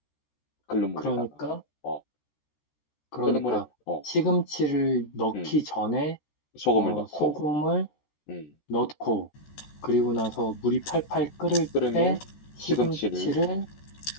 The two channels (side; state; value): right; late; 14 ms